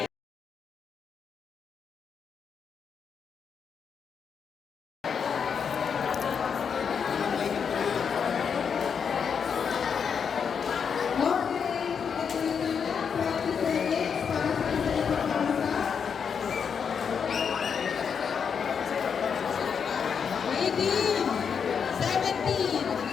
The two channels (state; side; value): quieter; right; 6.7 dB